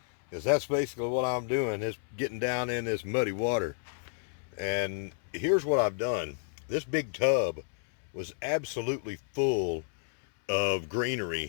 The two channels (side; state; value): right; silent; 57 dB below the other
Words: because that's basically what I'm doing, is getting down in this muddy water. And here's what I've done. This big tub was absolutely full of